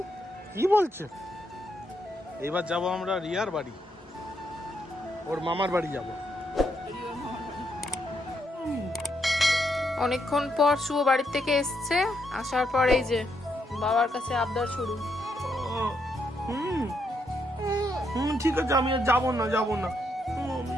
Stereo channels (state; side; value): normal; both; correlation 0.78